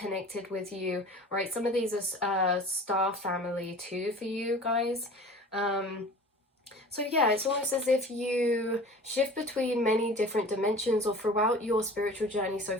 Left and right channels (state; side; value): normal; both; correlation 0.41